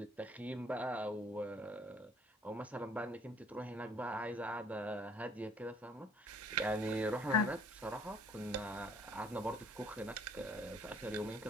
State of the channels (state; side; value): normal; both; correlation 0.58